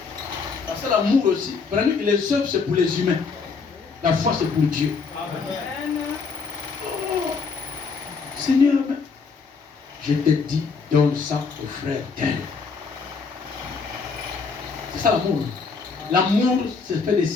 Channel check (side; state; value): right; quieter; 4.9 dB